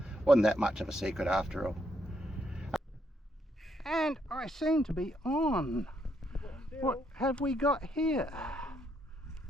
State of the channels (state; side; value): normal; both; correlation 0.75